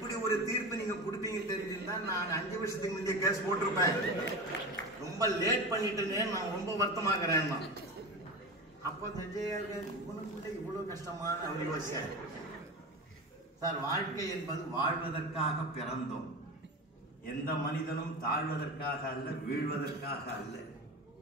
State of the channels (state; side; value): normal; both; correlation 0.27